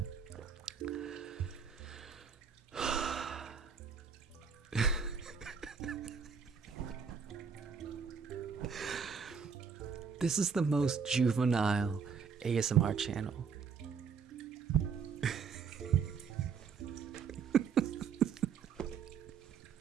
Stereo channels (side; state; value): left; quieter; 6.1 dB